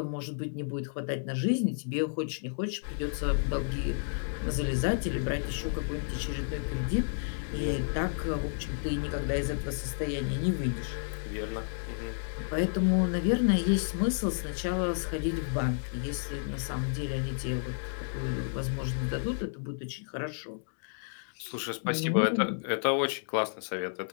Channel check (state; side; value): silent; right; digital silence